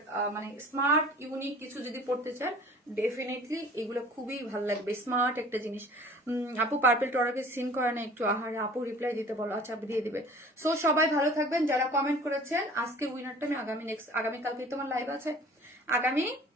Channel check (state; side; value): normal; both; correlation 0.47